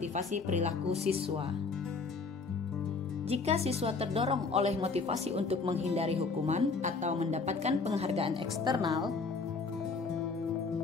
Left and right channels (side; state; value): right; quieter; 4.4 dB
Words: perilaku siswa. Jika siswa terdorong oleh motivasi untuk menghindari hukuman atau mendapatkan penghargaan eksternal,